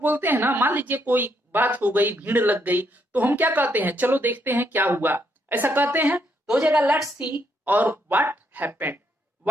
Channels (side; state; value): both; normal; correlation 0.75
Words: बोलते हैं ना, मान लीजिए कोई बात हो गई, भीड़ लग गई, तो हम क्या कहते हैं, चलो देखते हैं क्या हुआ, ऐसा कहते हैं। तो हो जाएगा लेट्स सी और what happened,